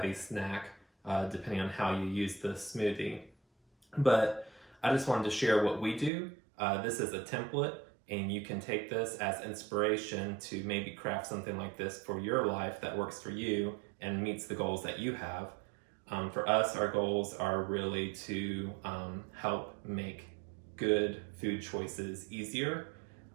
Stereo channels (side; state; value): left; drops out; at 6.1 s